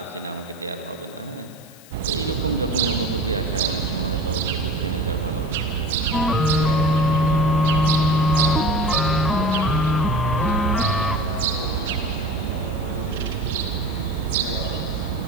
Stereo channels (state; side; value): noise; left; hiss, 23 dB below the sound